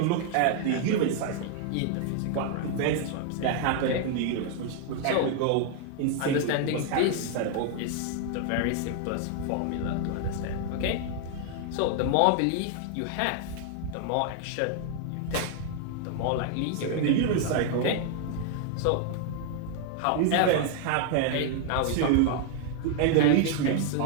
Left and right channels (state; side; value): different; both; correlation 0.00